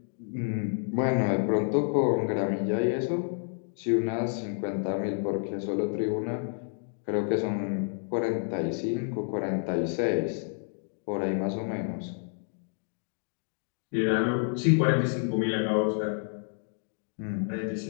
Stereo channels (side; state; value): right; silent; 57 dB below the other